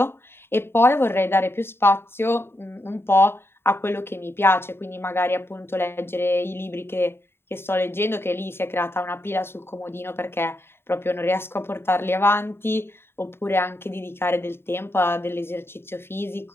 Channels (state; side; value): late; right; 0.11 ms